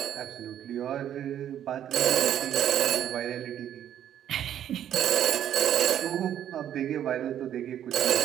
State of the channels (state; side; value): quieter; left; 10.5 dB